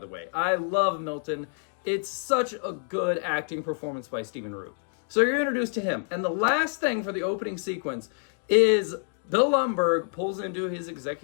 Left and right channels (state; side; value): silent; right; 60 dB below the other